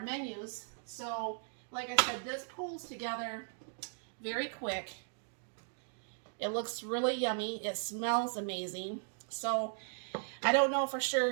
menus. So like I said, this pulls together very quick. It looks really yummy. It smells amazing. So I don't know for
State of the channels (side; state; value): left; silent; digital silence